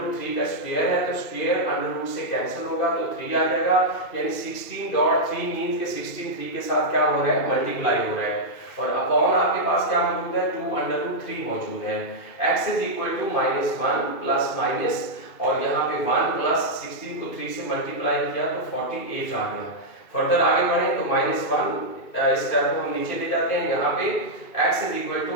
का स्क्वायर है तो स्क्वायर √रूट से कैंसिल होगा तो 3 आ जाएगा, यानी 16.3 मींस के 16 3 के साथ क्या हो रहा है, मल्टीप्लाई हो रहा है और अपॉन आपके पास क्या मौजूद है, 2√3 मौजूद है। x is equal to -1 plus minus और यहाँ पे 1 प्लस 16 को 3 से मल्टीप्लाई किया तो 48 आ गया। फर्दर आगे बढ़े तो -1 स्टेप को हम नीचे ले जाते हैं, यहाँ पे x is equal to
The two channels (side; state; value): right; late; 2.4 ms